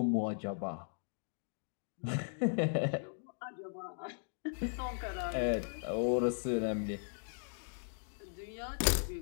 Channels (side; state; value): right; silent; digital silence